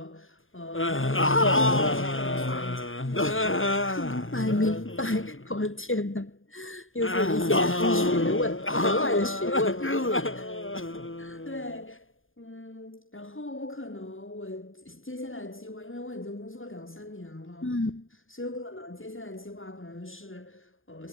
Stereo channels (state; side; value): late; right; 0.59 ms